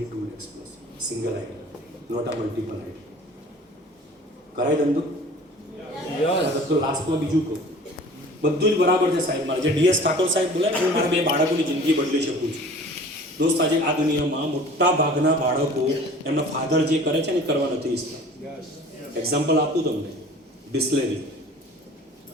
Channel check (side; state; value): both; normal; correlation 0.45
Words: lakhs plus, single ID, not આ મલ્ટિપલ આઈડી. કરાય ધંધો? તો લાસ્ટમાં બીજું કહું, બધું જ બરાબર છે સાહેબ. મારે જે ડીએસ ઠાકોર સાહેબ બોલે ને, હું મારા 2 બાળકોની જિંદગી બદલી શકું છું. દોસ્ત આજે આ દુનિયામાં મોટા ભાગના બાળકો એમના ફાધર જે કરે છે ને એ કરવા નથી ઈચ્છતા. એક્ઝામ્પલ આપું તમને,